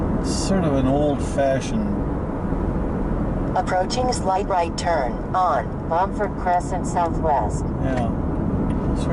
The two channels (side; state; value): both; identical; correlation 1.00